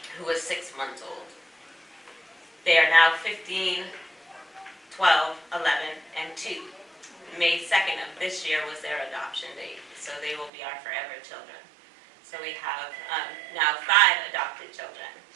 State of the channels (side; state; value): left; drops out; at 10.5 s